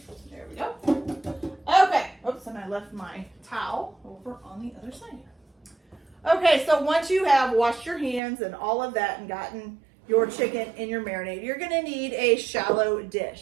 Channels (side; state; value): left; drops out; at 8.2 s